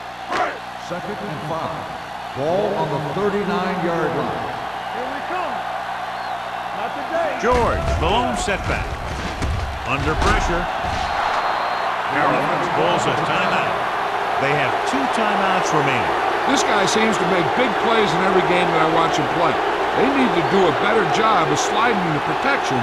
2nd and 5. Ball on the 39-yard line. Here we come. Not today. George, the lone setback. Under pressure. Carolina calls a timeout. They have 2 timeouts remaining. This guy seems to make big plays in every game that I watch him play. They need to do a better job of sliding the protection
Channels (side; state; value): both; identical; correlation 1.00